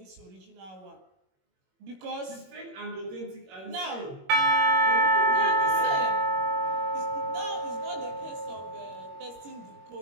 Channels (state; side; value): late; left; 21 ms